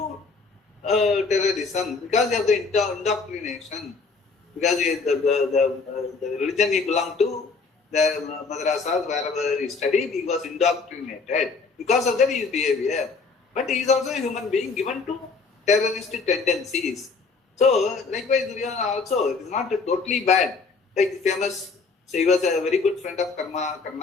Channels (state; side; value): quieter; right; 4.5 dB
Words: terrorism because of the indoctrination. Because the religion he belonged to, the madrasas, wherever he studied, he was indoctrinated. Because of that, his behavior. But he is also a human being given to terroristic tendencies. So, likewise, Duryodhana also, it is not totally bad. Like the famous, so he was a very good friend of